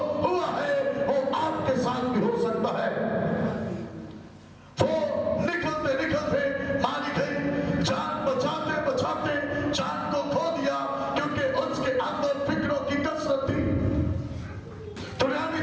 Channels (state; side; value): identical; both; correlation 1.00